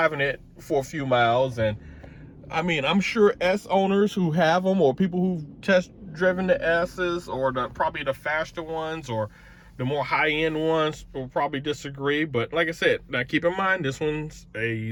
it for a few miles. And I mean, I'm sure S owners who have them, or people who've test driven the S's, or probably the faster ones or the more high-end ones, will probably disagree. But like I said, now keep in mind, this one's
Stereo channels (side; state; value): both; identical; correlation 1.00